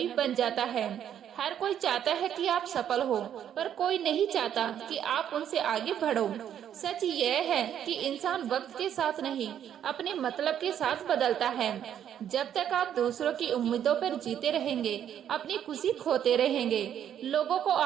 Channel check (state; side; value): quieter; left; 9.7 dB